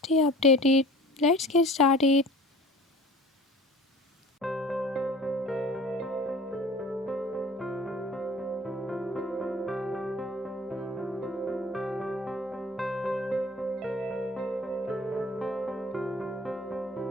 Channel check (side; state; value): both; normal; correlation 0.45